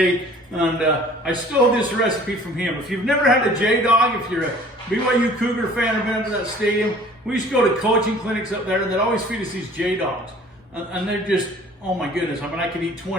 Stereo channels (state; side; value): normal; both; correlation 0.50